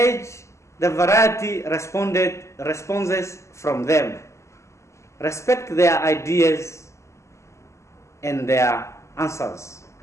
the variety responses from them. Respect their ideas and their answers.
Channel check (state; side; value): late; right; 0.14 ms